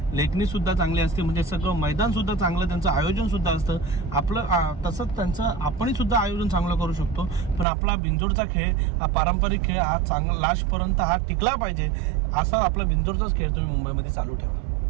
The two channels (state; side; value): drops out; left; at 7.7 s